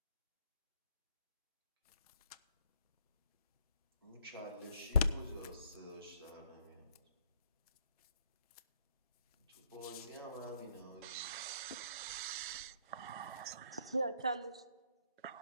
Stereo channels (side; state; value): both; inverted; correlation -0.68